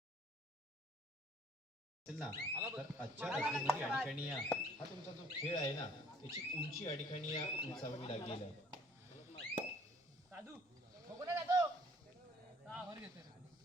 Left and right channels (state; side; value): normal; both; correlation 0.57